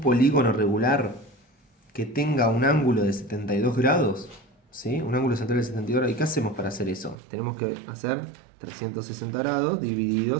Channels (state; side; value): drops out; left; at 7.2 s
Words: polígono regular que tenga un ángulo de 72 grados? ¿Sí? Un ángulo central de 72 grados. ¿Y qué hacemos para hacer eso? Tenemos que hacer 360 grados dividido